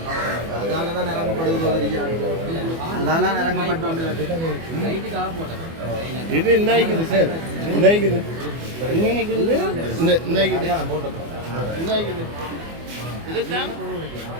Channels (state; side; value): late; left; 24 ms